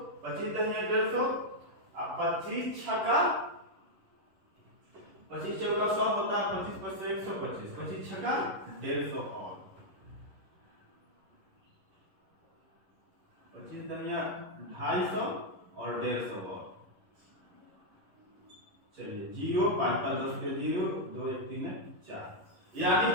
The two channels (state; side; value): late; left; 11 ms